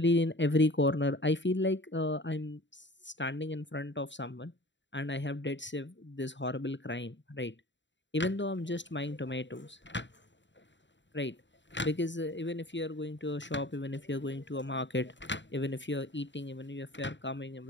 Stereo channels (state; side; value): late; right; 0.53 ms